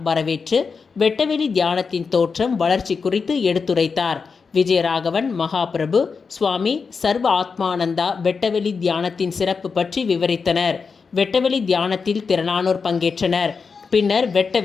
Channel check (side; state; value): right; quieter; 5.2 dB